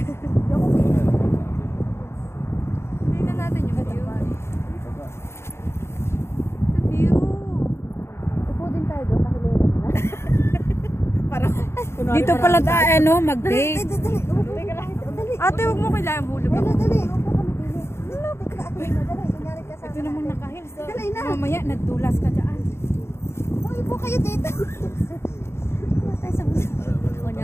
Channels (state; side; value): late; right; 0.12 ms